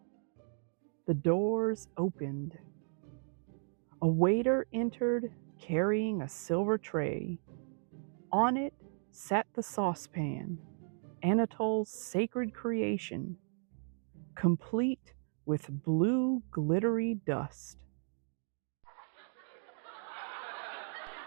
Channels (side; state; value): left; silent; 54 dB below the other